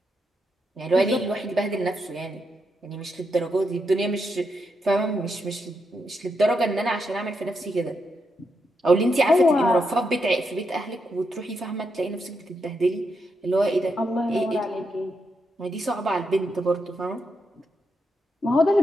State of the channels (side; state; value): both; normal; correlation 0.83